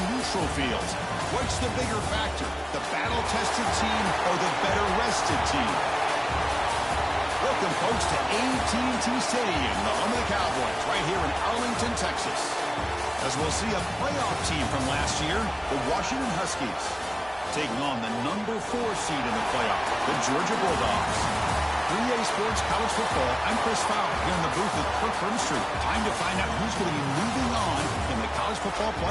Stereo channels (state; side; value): identical; both; correlation 1.00